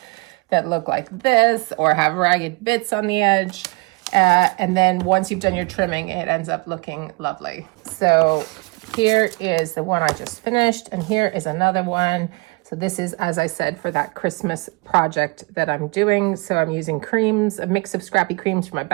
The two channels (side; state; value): left; quieter; 27.8 dB